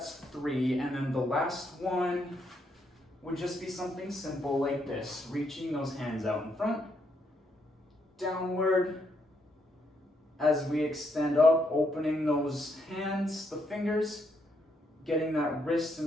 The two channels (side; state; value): both; normal; correlation 0.76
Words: 3, and then the last one would just be something simple like this, reaching those hands out in front, downward, as we extend up, opening those hands, the fingers, getting that wrist